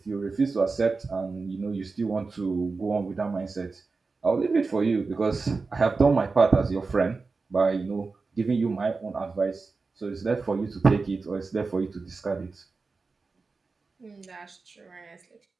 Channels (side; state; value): left; quieter; 4.2 dB